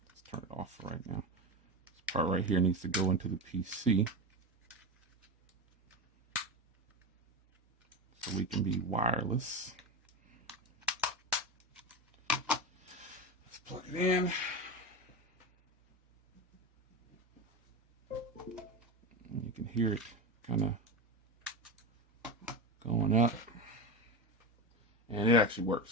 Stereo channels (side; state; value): both; normal; correlation 0.20